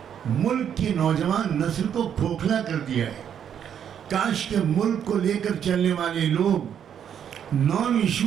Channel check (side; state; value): left; quieter; 8.8 dB